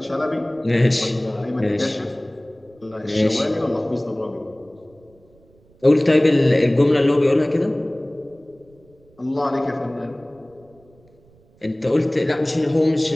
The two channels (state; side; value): noise; right; rumble, 30 dB below the sound